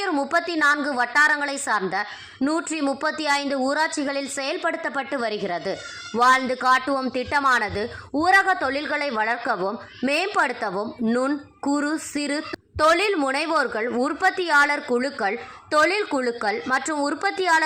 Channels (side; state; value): both; identical; correlation 1.00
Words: 34 வட்டாரங்களை சார்ந்த 135 ஊராட்சிகளில் செயல்படுத்தப்பட்டு வருகிறது. வாழ்ந்து காட்டுவோம் திட்டமானது ஊரக தொழில்களை வளர்க்கவும் மேம்படுத்தவும் நுண், குறு, சிறு தொழில் முனைவோர்கள், உற்பத்தியாளர் குழுக்கள், தொழில் குழுக்கள் மற்றும்